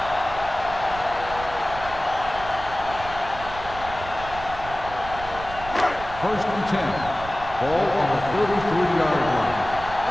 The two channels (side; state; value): right; noise; rumble, 12 dB below the sound